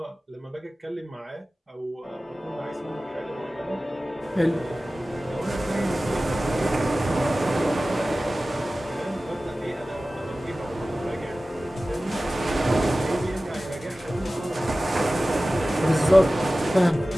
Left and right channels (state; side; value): normal; both; correlation 0.96